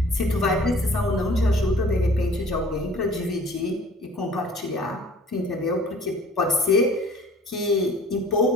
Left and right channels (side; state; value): both; normal; correlation 0.50